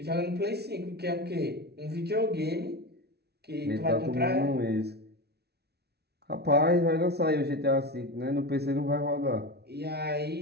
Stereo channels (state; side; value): late; left; 0.48 ms